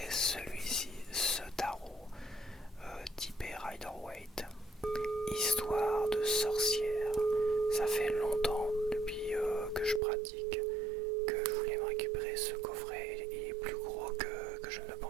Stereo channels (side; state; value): left; drops out; at 10.0 s